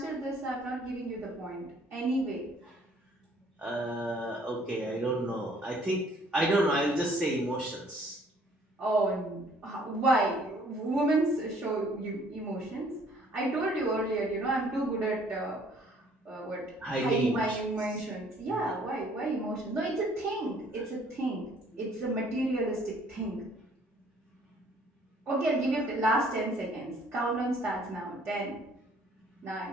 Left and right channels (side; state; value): both; normal; correlation 0.59